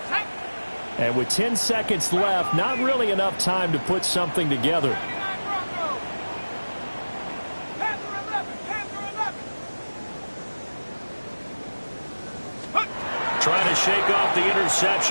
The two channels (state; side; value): inverted; both; correlation -1.00